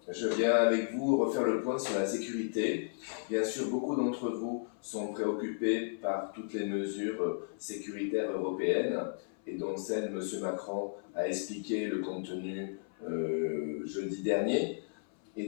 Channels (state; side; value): silent; right; 55 dB below the other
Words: je viens avec vous refaire le point sur la sécurité. Bien sûr, beaucoup d'entre vous sont préoccupés par toutes les mesures sécuritaires européennes et dont celle M. Macron a expliqué le contenu jeudi dernier. Et